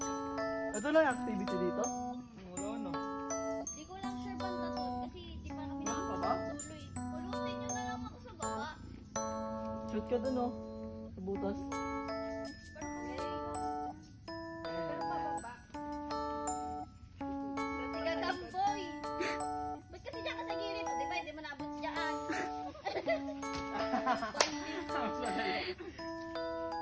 Ito lang yung activity dito? Wala na. Di ko lang sure banda to kasi di pa kami nakakatuloy. Pulutin nyo na lang ako sa baba. Shoot ka dun oh. Sa butas. Sige, kamboy. Ba't kasi dyan ka sa gilid? Di ba, hindi mo naabot dyan.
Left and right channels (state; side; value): identical; both; correlation 1.00